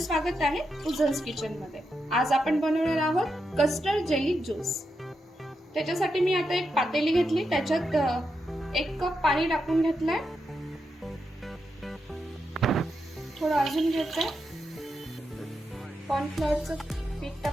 आहे उजन्स किचन मध्ये। आज आपण बनवणार आहोत कस्टर्ड जेली ज्यूस। त्याच्यासाठी मी आता एक पातेली घेतली, त्याच्यात 1 कप पाणी टाकून घेतलंय। थोडं अजून घेतलंय, कॉर्नफ्लोअरचं पीठ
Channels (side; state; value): both; normal; correlation 0.85